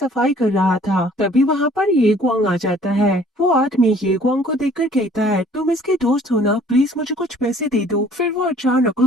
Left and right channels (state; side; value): normal; both; correlation 0.55